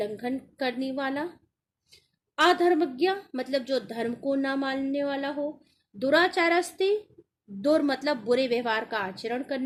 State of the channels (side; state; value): both; identical; correlation 1.00